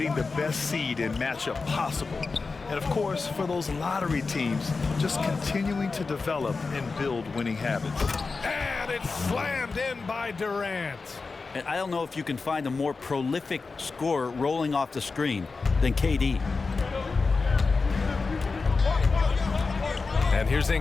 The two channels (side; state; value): right; quieter; 4.2 dB